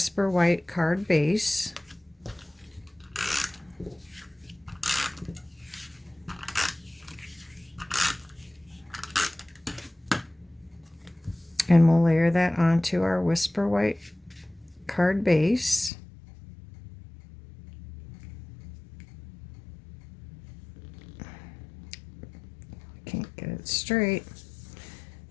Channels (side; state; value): right; drops out; at 15.9 s